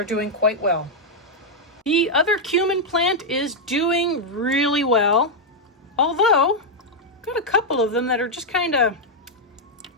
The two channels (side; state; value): both; normal; correlation -0.02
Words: doing quite well. The other cumin plant is doing really well, although I've got a couple of them that are just kind of